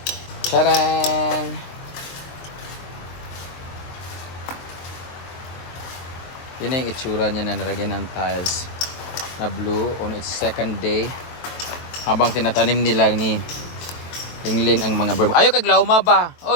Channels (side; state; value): right; late; 23 ms